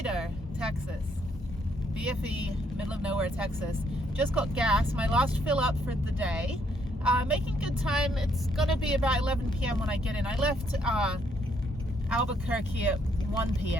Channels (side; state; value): both; normal; correlation 0.71